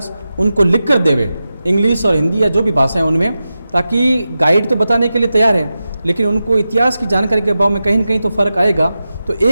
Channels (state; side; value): inverted; both; correlation -0.92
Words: उनको लिख कर देवे, इंग्लिश और हिंदी या जो भी भाषा है उनमें, ताकि गाइड तो बताने के लिए तैयार है लेकिन उनको इतिहास की जानकारी के अभाव में कहीं न कहीं तो फ़र्क आएगा। तो